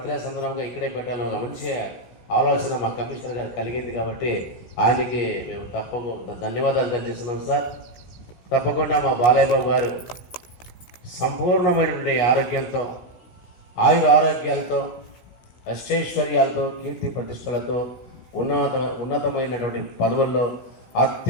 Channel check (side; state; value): right; late; 17 ms